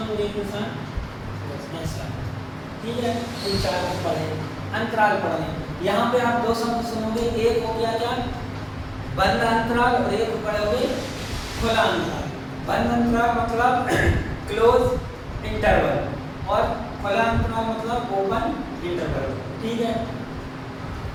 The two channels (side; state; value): both; identical; correlation 1.00